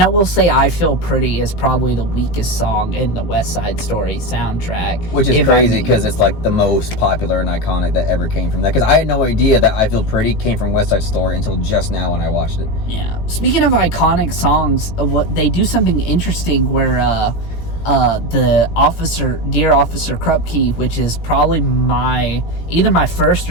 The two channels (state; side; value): late; right; 18 ms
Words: I will say, "I Feel Pretty" is probably the weakest song in the West Side Story soundtrack, which is crazy because it's like the most popular and iconic that ever came from that. Because I had no idea that "I Feel Pretty" came from West Side Story until just now when I watched it. Yeah. Speaking of iconic songs, what they do something interesting where the Dear Officer Krupke, which is probably either my first